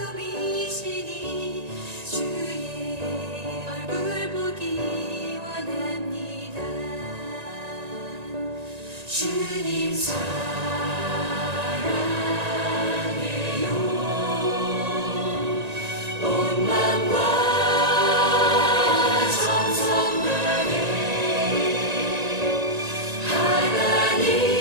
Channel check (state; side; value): late; left; 1.9 ms